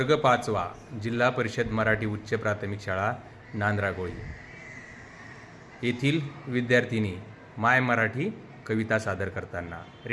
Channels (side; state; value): both; identical; correlation 1.00